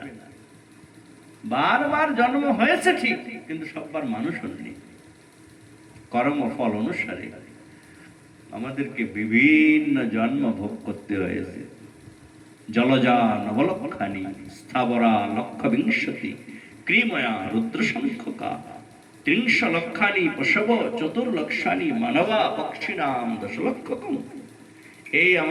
বারবার জন্ম হয়েছে ঠিক, কিন্তু সববার মানুষ হননি। কর্মফল অনুসারে আমাদেরকে বিভিন্ন জন্ম ভোগ করতে হয়েছে। জলজা নবলক্ষানি স্থাবরা লক্ষ বিংশতি ক্রিময়া রুদ্রশঙ্খকা 30 লক্ষানি পশব 4 মানবা পক্ষিণাম 10 লক্ষকম। এই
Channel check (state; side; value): identical; both; correlation 1.00